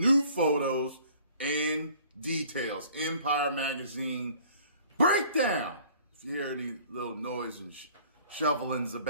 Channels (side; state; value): both; inverted; correlation -0.53